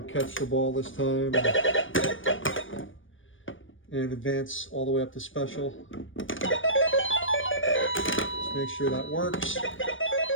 catch the ball this time. And advance all the way up to special. Make sure that works.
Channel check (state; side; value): late; right; 0.57 ms